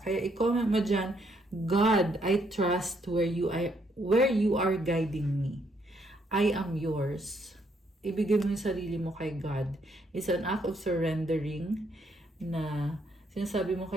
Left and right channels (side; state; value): both; normal; correlation 0.72